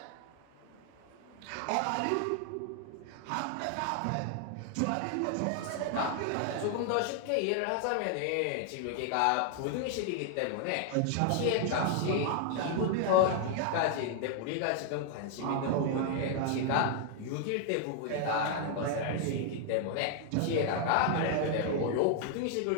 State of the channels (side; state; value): both; different; correlation 0.00